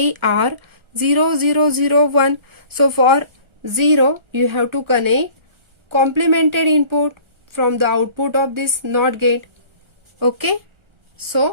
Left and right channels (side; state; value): left; late; 1.4 ms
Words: are 0, 0, 0, 1. So for 0, you have to connect complemented input from the output of this NOT gate. Okay,